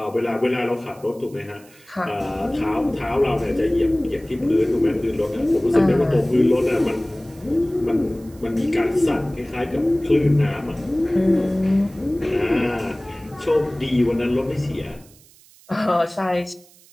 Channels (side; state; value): right; noise; hiss, 26 dB below the sound